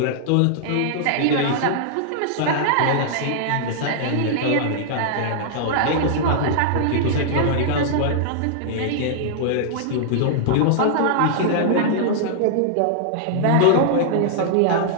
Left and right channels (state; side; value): different; both; correlation -0.01